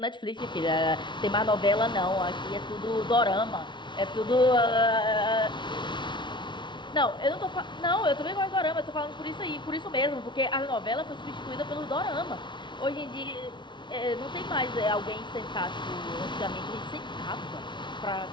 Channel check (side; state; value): right; late; 0.23 ms